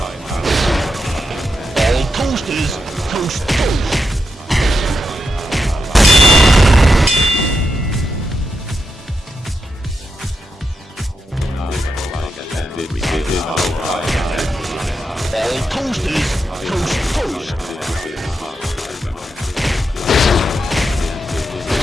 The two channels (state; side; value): normal; both; correlation 0.85